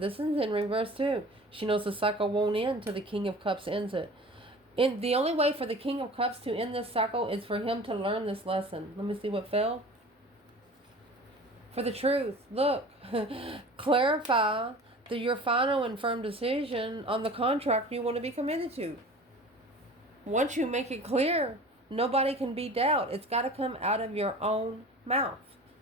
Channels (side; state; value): both; normal; correlation 0.41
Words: is in reverse too. She knows the cycle won't end till the King of Cups ends it. And the only way for the King of Cups to end this cycle is for him to learn this lesson. Let me see what fell. For the truth. Look. Clarify your final and firm decision on the contract you want to be committed to. Once you make it clear, nobody can be doubt. It's got to come out of your own mouth.